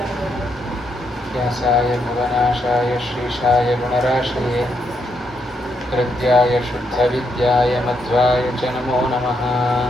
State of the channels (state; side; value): normal; both; correlation 0.78